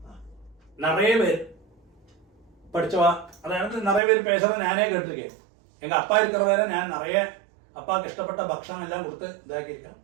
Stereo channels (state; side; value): drops out; left; at 4.0 s